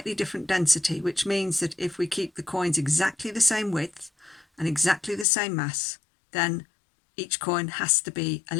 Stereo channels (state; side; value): drops out; right; at 5.2 s